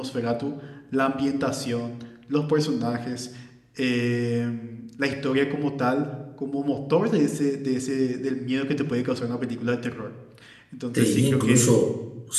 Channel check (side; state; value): both; identical; correlation 1.00